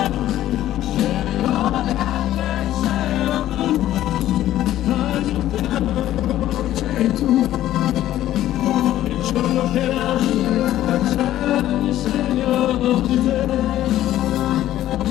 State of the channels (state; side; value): quieter; right; 13.3 dB